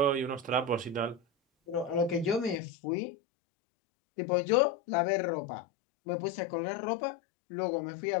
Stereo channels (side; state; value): right; drops out; at 2.6 s